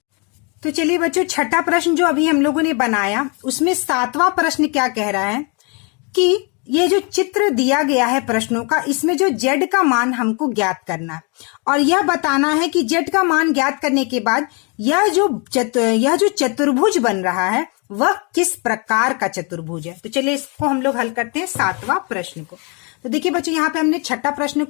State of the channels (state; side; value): quieter; right; 33.4 dB